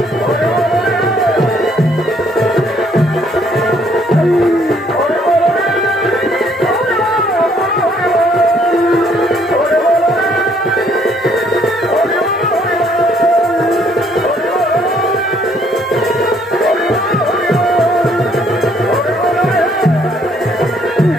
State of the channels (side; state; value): both; normal; correlation 0.65